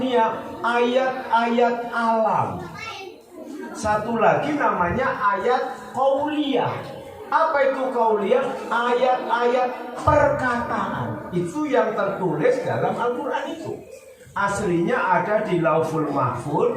Ayat-ayat alam. Satu lagi namanya ayat qauliyah. Apa itu qauliyah? Ayat-ayat perkataan. Itu yang tertulis dalam Al-Quran itu. Aslinya ada di Lauful Mahfuz,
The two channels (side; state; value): both; identical; correlation 1.00